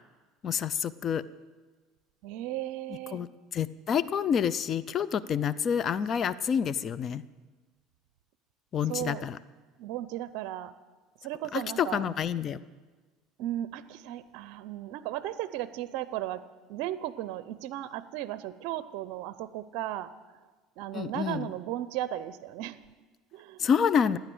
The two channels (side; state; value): right; quieter; 3.1 dB